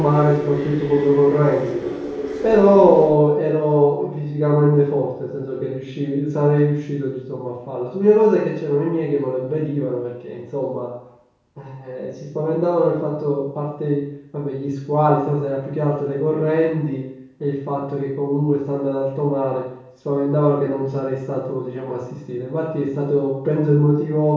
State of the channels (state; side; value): identical; both; correlation 1.00